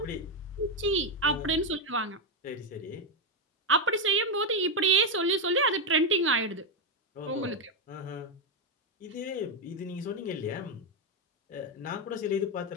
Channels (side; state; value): both; normal; correlation 0.06